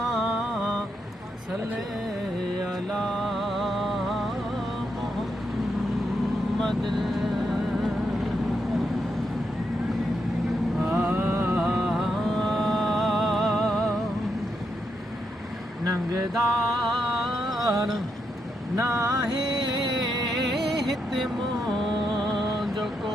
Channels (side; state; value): both; normal; correlation 0.82